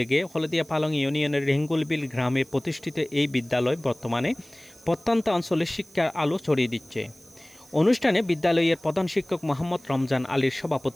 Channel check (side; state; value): right; noise; hiss, 26 dB below the sound